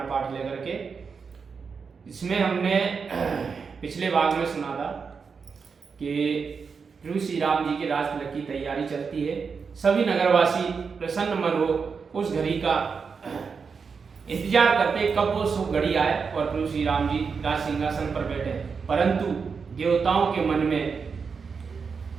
पाठ लेकर के। इसमें हमने पिछले भाग में सुना था कि प्रभु श्री राम जी के राज तिलक की तैयारी चलती है। सभी नगरवासी प्रसन्न मन हो उस घड़ी का इंतजार करते कब वो शुभ घड़ी आए और प्रभु श्री राम जी राज सिंहासन पर बैठे। परंतु देवताओं के मन में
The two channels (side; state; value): left; quieter; 5.5 dB